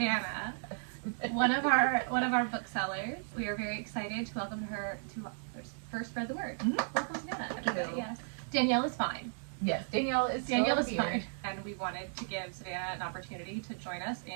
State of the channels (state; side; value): silent; left; digital silence